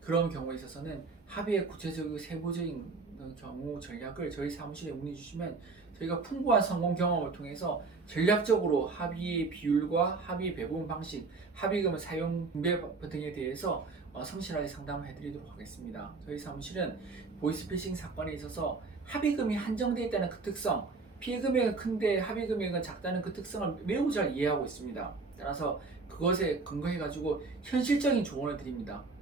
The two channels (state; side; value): quieter; left; 4.1 dB